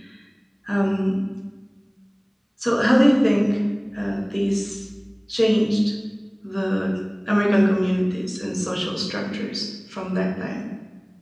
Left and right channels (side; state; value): both; identical; correlation 1.00